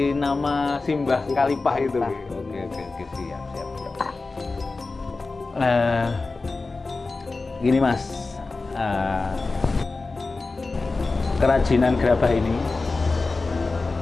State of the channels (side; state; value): right; quieter; 3.7 dB